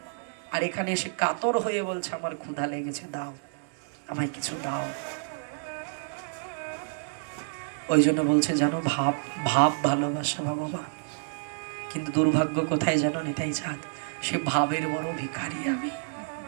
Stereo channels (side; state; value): left; silent; 59 dB below the other